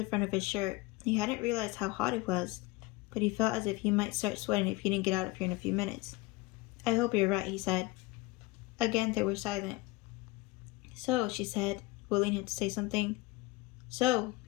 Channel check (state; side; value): quieter; right; 20.7 dB